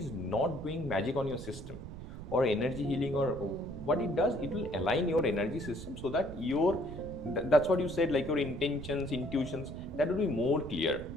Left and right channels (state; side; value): noise; right; rumble, 11 dB below the sound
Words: not doing magic on your system or energy healing, or what it does, it will align your energy system so that that's what you said, like your intentions, intuitions, that will be more clear.